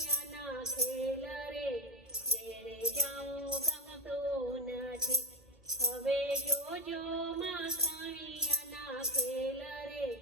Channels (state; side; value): normal; both; correlation 0.14